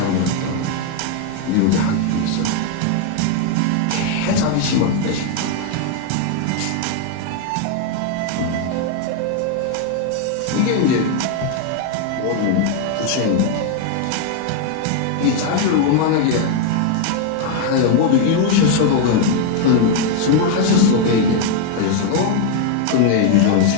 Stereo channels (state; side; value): different; both; correlation 0.01